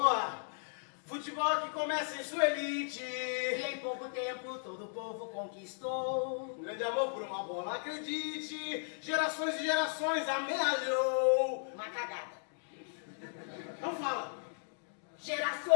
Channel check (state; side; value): silent; right; digital silence